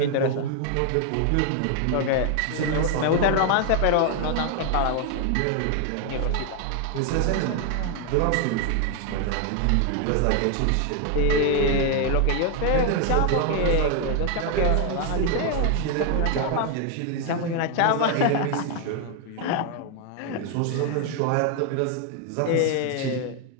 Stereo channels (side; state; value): both; different; correlation 0.00